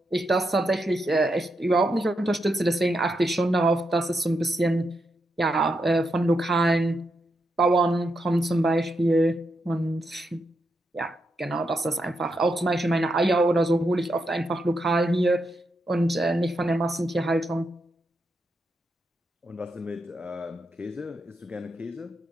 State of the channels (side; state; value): both; normal; correlation 0.83